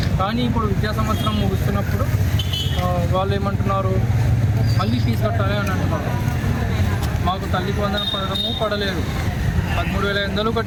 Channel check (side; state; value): both; identical; correlation 1.00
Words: కానీ ఇప్పుడు విద్యా సంవత్సరం ముగుస్తున్నప్పుడు వాళ్ళు ఏమంటున్నారు, మళ్ళీ ఫీజు కట్టాలి అని అంటున్నారు. మాకు తల్లికి వందనం పడడము పడలేదు. 13,500